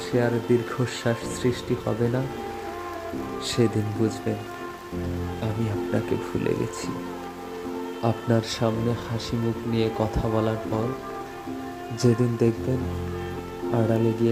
আর দীর্ঘশ্বাস সৃষ্টি হবে না, সেদিন বুঝবেন আমি আপনাকে ভুলে গেছি। আপনার সামনে হাসি মুখ নিয়ে কথা বলার পর যেদিন দেখবেন আড়ালে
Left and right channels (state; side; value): identical; both; correlation 1.00